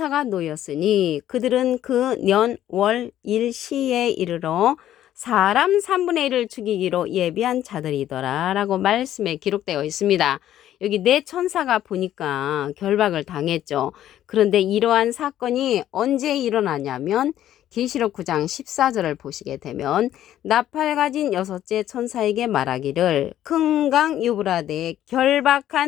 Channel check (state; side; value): quieter; right; 12.0 dB